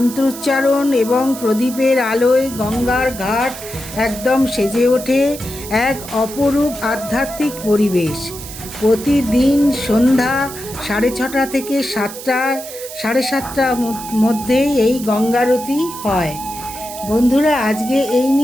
এবং প্রদীপের আলোয় গঙ্গার ঘাট একদম সেজে ওঠে এক অপরূপ আধ্যাত্মিক পরিবেশ। প্রতিদিন সন্ধ্যা 6:30 থেকে 7:30 মধ্যে এই গঙ্গারতি হয়। বন্ধুরা, আজকে এই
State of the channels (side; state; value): right; noise; hiss, 12 dB below the sound